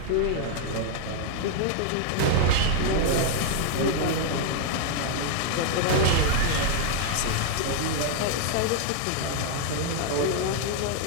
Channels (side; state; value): both; different; correlation 0.00